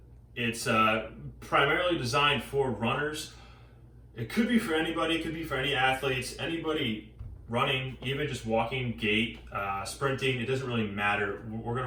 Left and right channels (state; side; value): identical; both; correlation 1.00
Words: it's primarily designed for runners. It could be for anybody, it could be for any athletes, anybody running, even just walking, gait, sprinting, it doesn't really matter. What we're